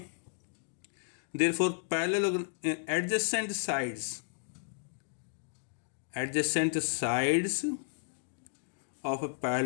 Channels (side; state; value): right; silent; digital silence